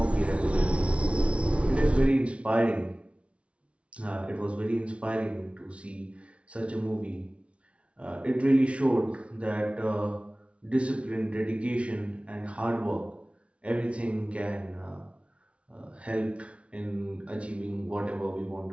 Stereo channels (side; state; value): left; late; 0.061 ms